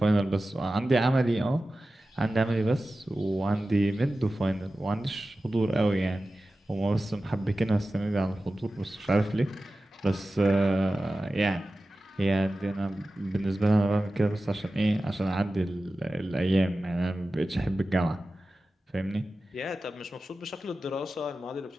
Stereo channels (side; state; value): both; normal; correlation 0.95